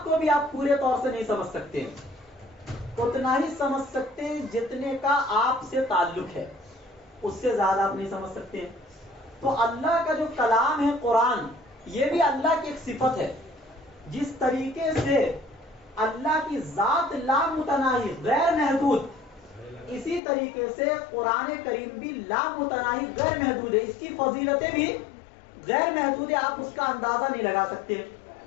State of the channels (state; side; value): drops out; right; at 20.2 s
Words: کو بھی آپ پورے طور سے نہیں سمجھ سکتے، اتنا ہی سمجھ سکتے ہیں جتنے کا آپ سے تعلق ہے، اس سے زیادہ آپ نہیں سمجھ سکتے۔ تو اللہ کا جو کلام ہے قرآن، یہ بھی اللہ کی ایک صفت ہے۔ جس طریقے سے اللہ کی ذات لامتناہی غیر محدود، اسی طریقے سے قرآن کریم بھی لامتناہی غیر محدود ہے، اس کی فضیلتیں بھی غیر محدود ہے، آپ اس کا اندازہ نہیں لگا سکتے۔